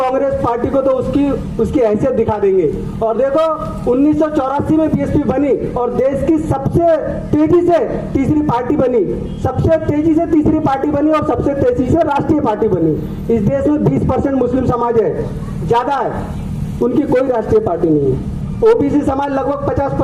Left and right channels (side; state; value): both; identical; correlation 1.00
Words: पार्टी को तो उसकी हैसियत दिखा देंगे। और देखो 1984 में बीएसपी बनी और देश की सबसे तेजी से तीसरी पार्टी बनी, सबसे तेजी से तीसरी पार्टी बनी और सबसे तेजी से राष्ट्रीय पार्टी बनी। इस देश में 20% मुस्लिम समाज है, ज्यादा है, उनकी कोई राष्ट्रीय पार्टी नहीं है। ओबीसी समाज लगभग